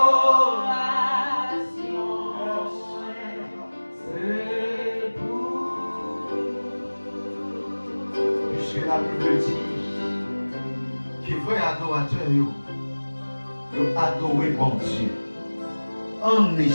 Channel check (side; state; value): both; inverted; correlation -1.00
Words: Parce que la Bible dit que vrai adorateur, ils adoré bon Dieu en